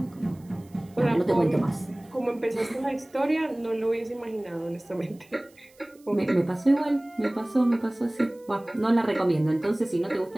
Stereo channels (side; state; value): right; noise; hiss, 30 dB below the sound